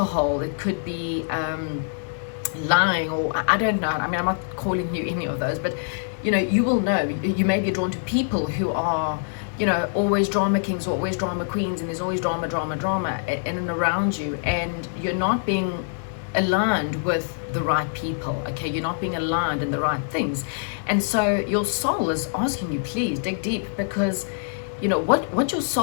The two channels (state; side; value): silent; right; digital silence